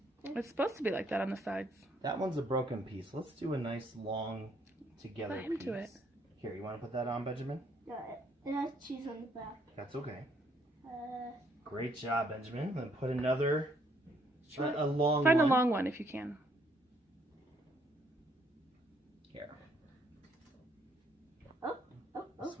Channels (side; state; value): both; normal; correlation 0.69